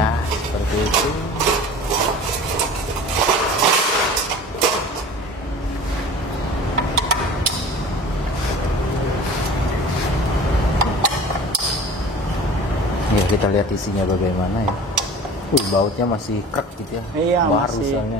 seperti itu. Ya, kita lihat isinya bagaimana ya. Bautnya masih krek gitu ya. Iya, baru masih.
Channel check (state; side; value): normal; both; correlation 0.41